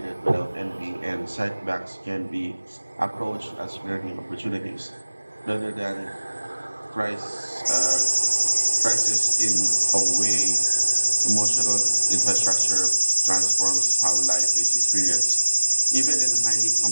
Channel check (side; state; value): both; inverted; correlation -1.00